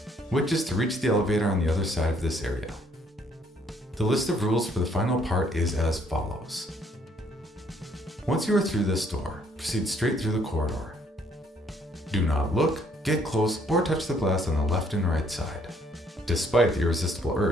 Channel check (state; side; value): normal; both; correlation 0.65